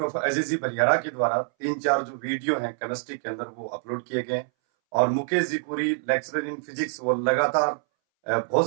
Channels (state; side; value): silent; left; 61 dB below the other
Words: of AGG Baliyara के द्वारा 3-4 जो वीडियो हैं केमिस्ट्री के अंदर वो अपलोड किए गए हैं और Mukesh ji Puri lecturer in physics वो लगातार